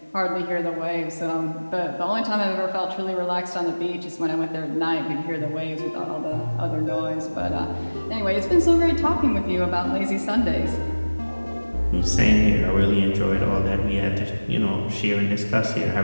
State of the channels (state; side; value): inverted; both; correlation -1.00